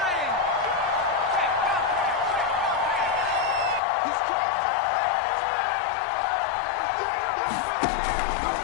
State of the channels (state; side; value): drops out; right; at 3.8 s